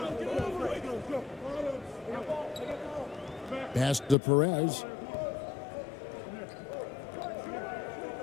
Pass to Perez.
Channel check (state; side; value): drops out; right; at 4.2 s